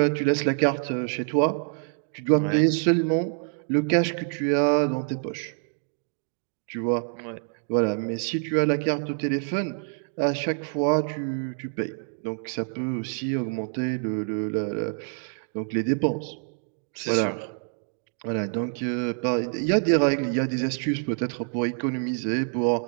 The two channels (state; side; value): silent; left; 61 dB below the other